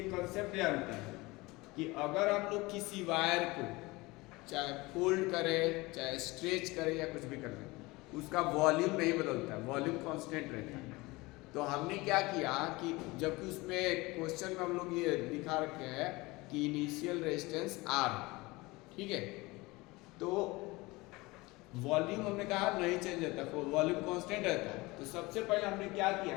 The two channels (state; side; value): quieter; right; 22.4 dB